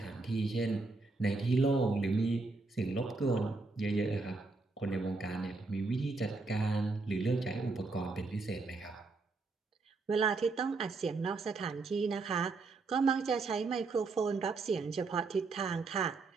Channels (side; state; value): left; quieter; 3.8 dB